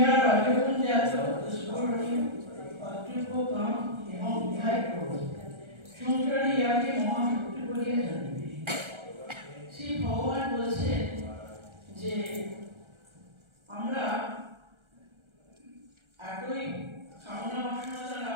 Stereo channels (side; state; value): left; late; 1.4 ms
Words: রজগুণ জাত স্ফুরণীয় অতৃপ্য কাম এবং ইহাই ক্রোধ। সংসারে ইহাকে মহাশক্তি বলিয়া জানিবে। শ্রী ভগবান বলছেন যে আমরা এতই কামনা বাসনা দ্বারা